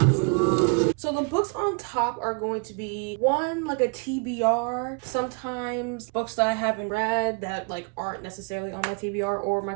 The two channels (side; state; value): left; quieter; 36.9 dB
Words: on top are going to be one, like a TBR, sometimes books that I haven't read that like aren't necessarily on my TBR or my